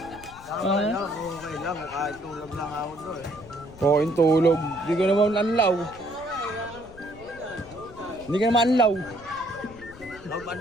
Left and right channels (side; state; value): left; noise; rumble, 19 dB below the sound